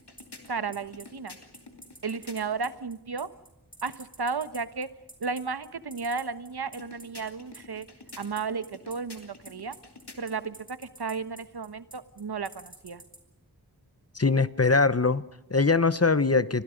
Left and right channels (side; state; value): both; normal; correlation 0.02